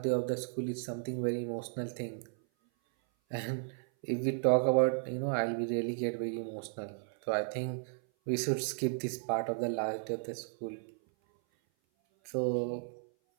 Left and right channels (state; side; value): silent; left; 55 dB below the other